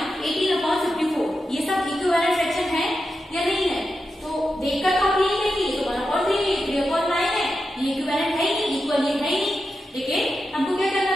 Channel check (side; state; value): both; normal; correlation 0.89